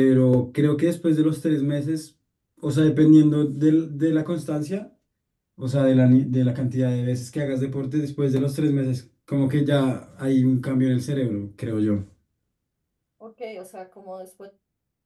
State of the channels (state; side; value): identical; both; correlation 1.00